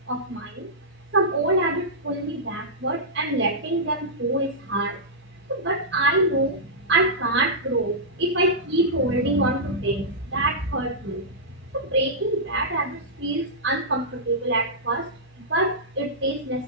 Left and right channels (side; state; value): both; normal; correlation -0.13